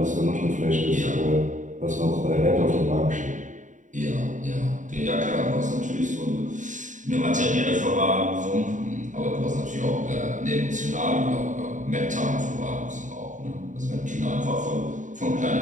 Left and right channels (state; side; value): late; left; 0.36 ms